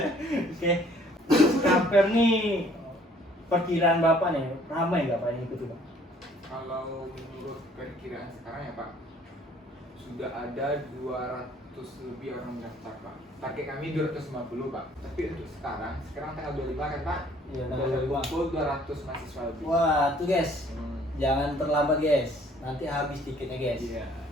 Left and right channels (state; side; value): normal; both; correlation 0.59